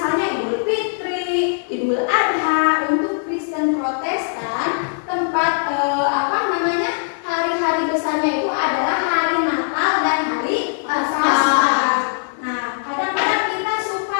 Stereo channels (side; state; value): right; silent; 61 dB below the other